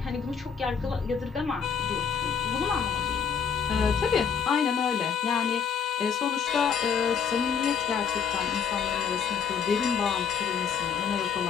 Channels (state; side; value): quieter; right; 6.8 dB